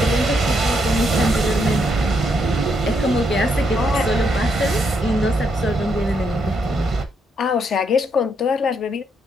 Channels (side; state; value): both; normal; correlation 0.76